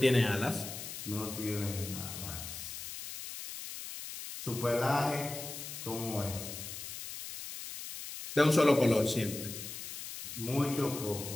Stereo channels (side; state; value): left; noise; hiss, 9 dB below the sound